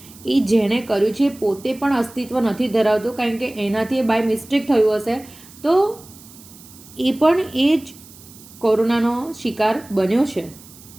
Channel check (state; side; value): noise; right; hiss, 21 dB below the sound